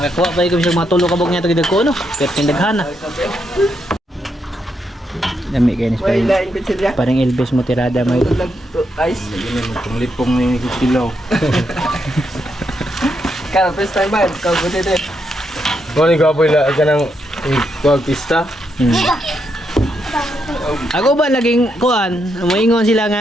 pa ko sa mga tulo kabog niya to gidag ko no. Pero tindaghana. Dami kayo ni May lain ko siya. parang Elvis mo tirada may Ice. Itong lipong ni Kilaw. Kaya first time ba? Kau buti din. Kung ni Gaboy la ka ng pista. Ako ba laging kuan, moingon sila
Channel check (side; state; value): both; normal; correlation 0.80